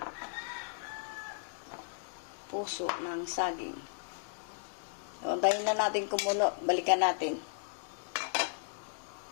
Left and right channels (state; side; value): silent; right; digital silence